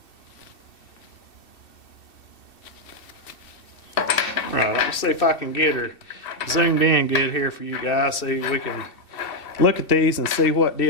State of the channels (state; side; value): late; right; 2.6 ms